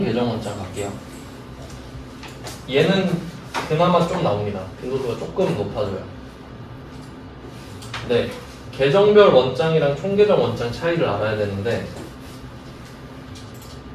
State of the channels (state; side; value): identical; both; correlation 1.00